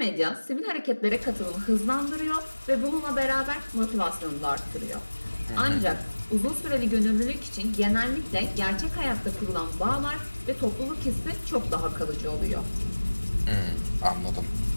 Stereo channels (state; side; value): inverted; both; correlation -1.00